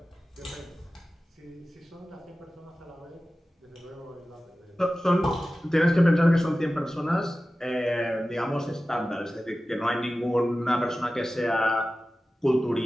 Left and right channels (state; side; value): normal; both; correlation 0.95